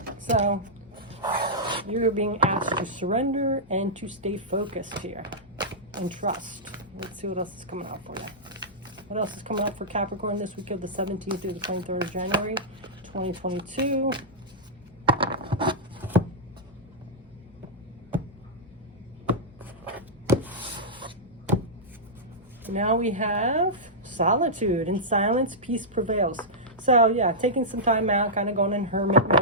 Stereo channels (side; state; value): both; normal; correlation -0.11